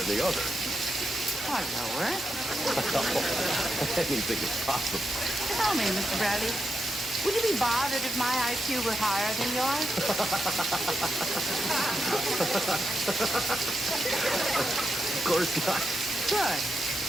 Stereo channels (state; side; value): normal; both; correlation 0.85